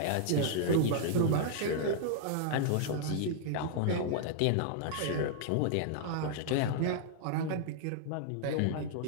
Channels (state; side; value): different; both; correlation -0.01